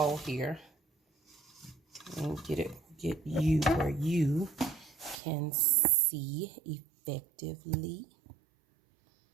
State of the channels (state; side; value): drops out; left; at 5.2 s